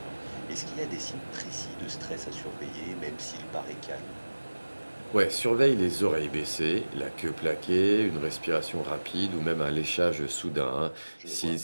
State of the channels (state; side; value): inverted; both; correlation -1.00